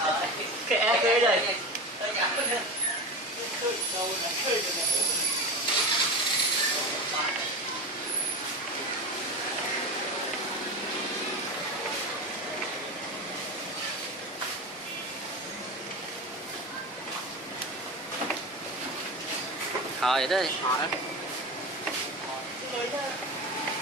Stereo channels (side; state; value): both; normal; correlation 0.26